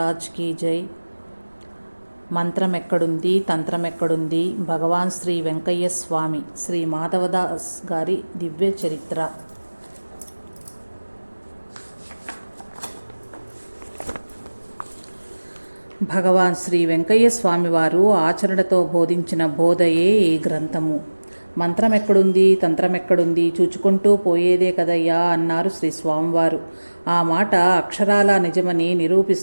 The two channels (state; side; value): inverted; both; correlation -1.00